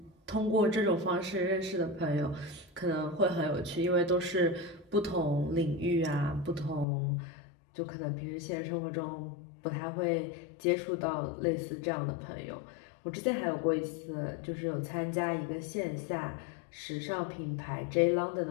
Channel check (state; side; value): drops out; right; at 6.9 s